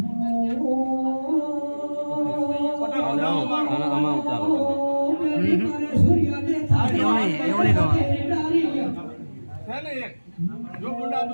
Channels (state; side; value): inverted; both; correlation -1.00